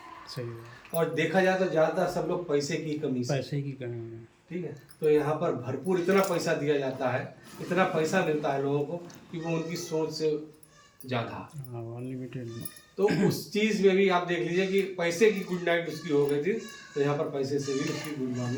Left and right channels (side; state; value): both; identical; correlation 1.00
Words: सही है। और देखा जाए तो ज़्यादातर सब लोग पैसे की कमी से, पैसे की कमी है। ठीक है, तो यहाँ पर भरपूर इतना पैसा दिया जाता है, इतना पैसा मिलता है लोगों को कि वो उनकी सोच से ज़्यादा, अनलिमिटेड। तो उस चीज़ में भी आप देख लीजिए कि पैसे की गुड नाइट उसकी हो गई थी, तो यहाँ पर पैसे से भी उसकी गुड